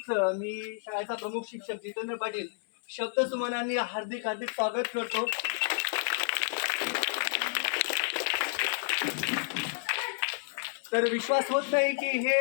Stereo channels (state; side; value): silent; right; 57 dB below the other